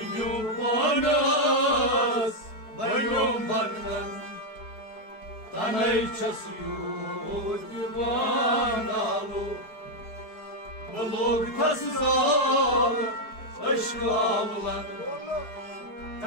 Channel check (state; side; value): late; right; 4.7 ms